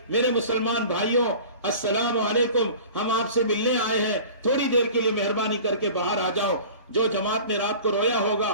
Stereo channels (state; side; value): inverted; both; correlation -0.41